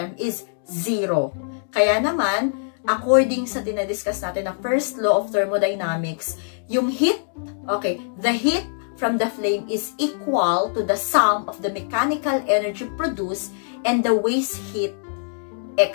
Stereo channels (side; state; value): right; silent; digital silence